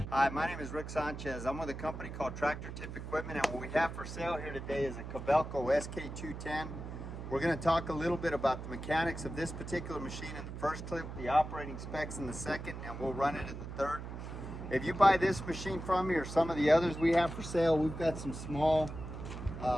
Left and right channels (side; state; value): right; noise; hum, 8 dB below the sound